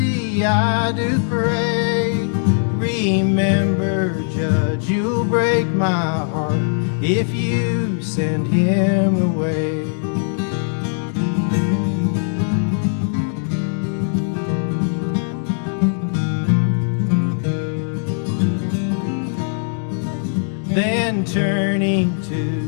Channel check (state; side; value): silent; right; digital silence